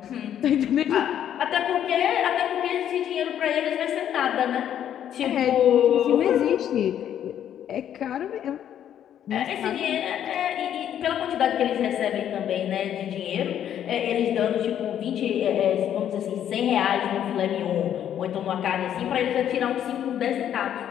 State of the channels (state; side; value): quieter; right; 10.1 dB